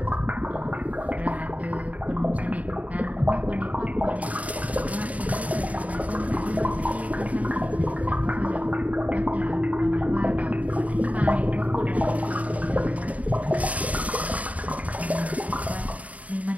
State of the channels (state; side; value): late; left; 0.069 ms